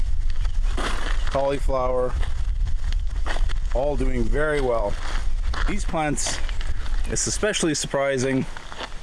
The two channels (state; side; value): identical; both; correlation 1.00